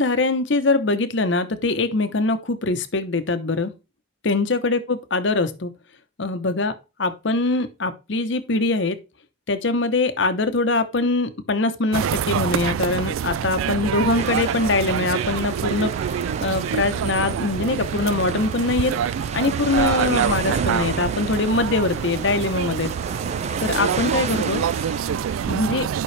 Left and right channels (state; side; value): normal; both; correlation 0.07